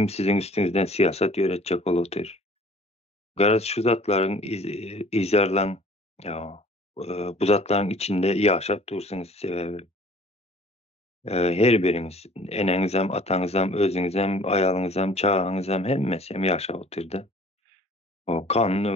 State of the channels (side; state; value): both; normal; correlation 0.52